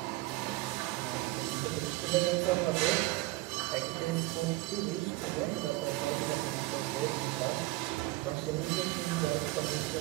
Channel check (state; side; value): quieter; left; 20.0 dB